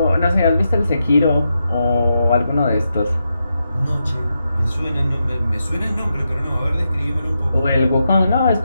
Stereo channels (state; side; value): inverted; both; correlation -0.85